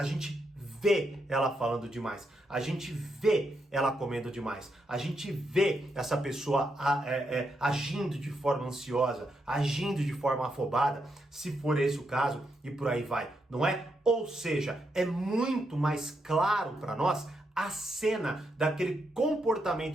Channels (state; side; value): normal; both; correlation 0.81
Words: gente vê ela falando demais, a gente vê ela comendo demais, a gente vê essa pessoa agindo de forma ansiosa, agindo de forma afobada, se for esse o caso, e por aí vai, não é? Ou seja, é muito mais claro para nós a cena daquele